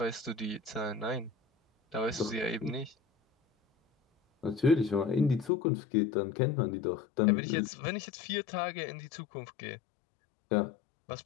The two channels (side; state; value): right; drops out; at 5.5 s